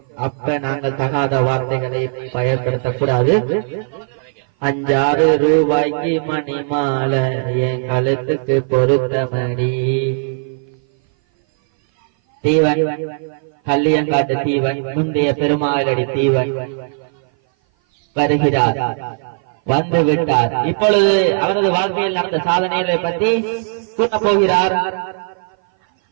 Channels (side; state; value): left; silent; 57 dB below the other